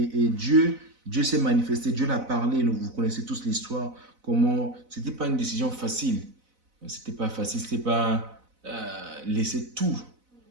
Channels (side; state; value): left; late; 4.0 ms